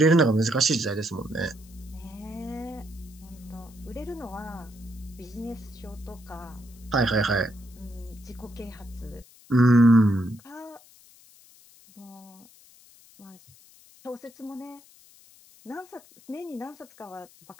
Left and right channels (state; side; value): noise; left; hiss, 25 dB below the sound